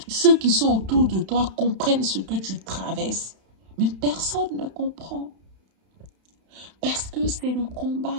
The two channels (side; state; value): left; late; 31 ms